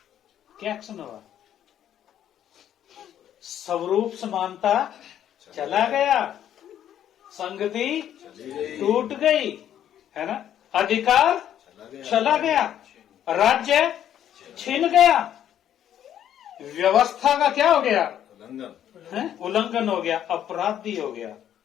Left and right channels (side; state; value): right; quieter; 10.5 dB